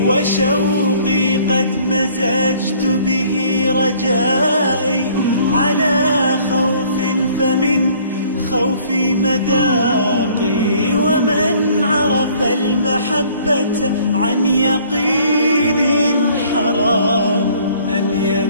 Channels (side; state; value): both; inverted; correlation -0.57